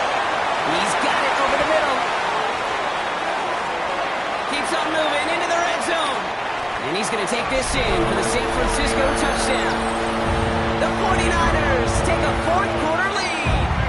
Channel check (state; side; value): identical; both; correlation 1.00